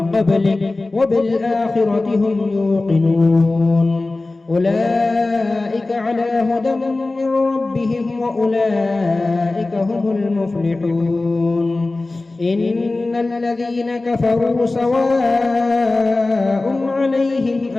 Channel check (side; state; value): right; quieter; 3.2 dB